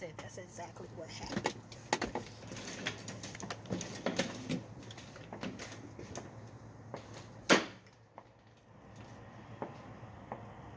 that's exactly what happened.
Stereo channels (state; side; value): identical; both; correlation 1.00